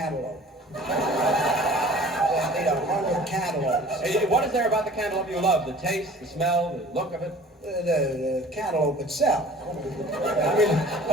I need 100 cantaloupes. Hey, what is there about the cantaloupe you love? The taste, the smell, the look of it? The cantaloupe itself. I mean,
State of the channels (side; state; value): both; normal; correlation 0.47